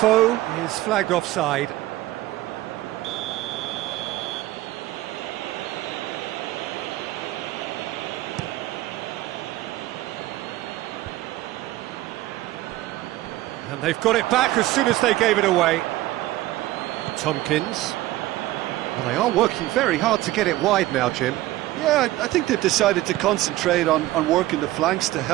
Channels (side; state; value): left; quieter; 16.4 dB